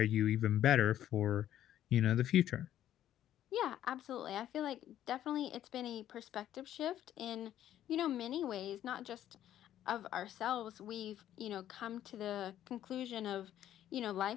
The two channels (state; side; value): quieter; right; 11.7 dB